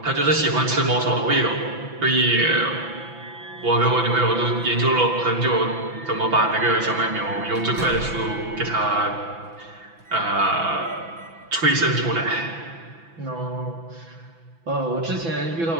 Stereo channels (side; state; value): left; late; 6.0 ms